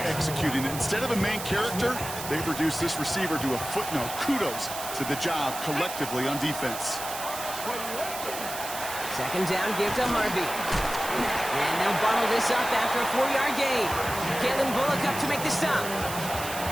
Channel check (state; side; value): noise; right; hiss, 8 dB below the sound